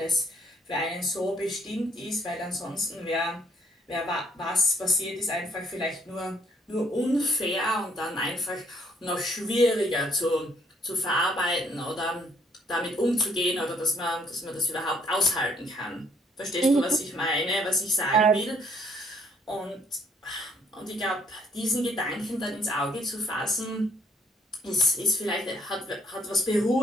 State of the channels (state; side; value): normal; both; correlation 0.66